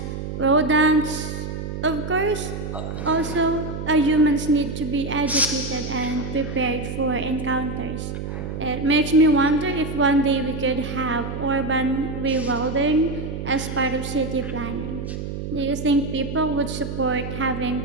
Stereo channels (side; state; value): right; noise; hum, 6 dB below the sound